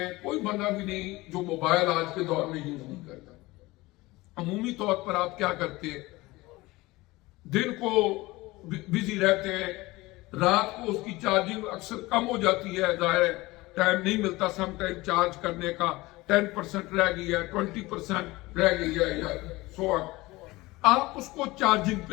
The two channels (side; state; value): right; quieter; 20.6 dB